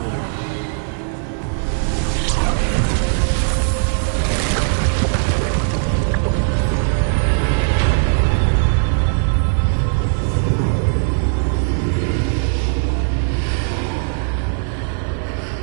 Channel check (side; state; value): left; silent; 59 dB below the other